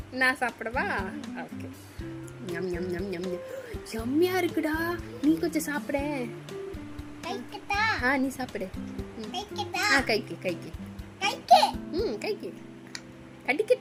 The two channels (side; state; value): both; identical; correlation 1.00